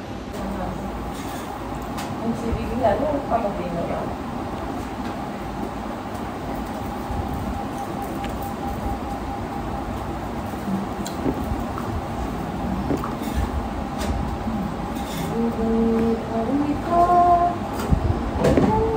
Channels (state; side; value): identical; both; correlation 1.00